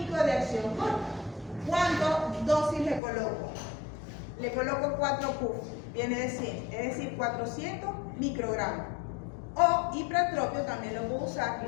de acción corta. ¿Cuántas dosis le coloco? Le coloco 4 puff, viene de 100, es decir, 400 microgramos. O ipratropio también lo puedo usar,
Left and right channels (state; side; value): drops out; right; at 3.0 s